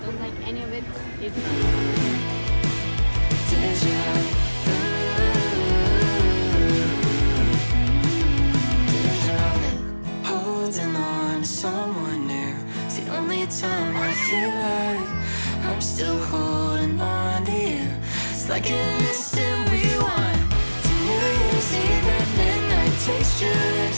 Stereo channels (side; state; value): both; inverted; correlation -1.00